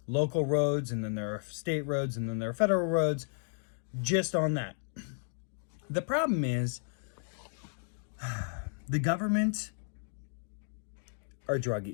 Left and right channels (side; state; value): right; silent; digital silence